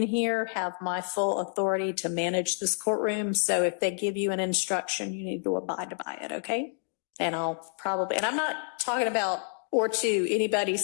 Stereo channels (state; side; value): silent; right; 59 dB below the other